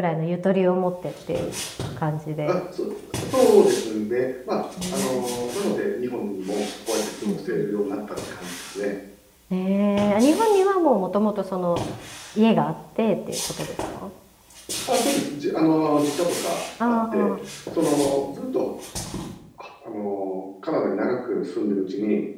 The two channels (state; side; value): identical; both; correlation 1.00